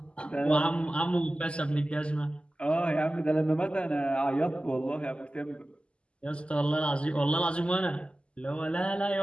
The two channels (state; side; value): late; right; 0.054 ms